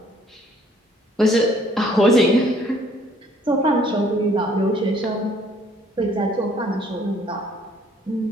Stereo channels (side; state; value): both; normal; correlation 0.61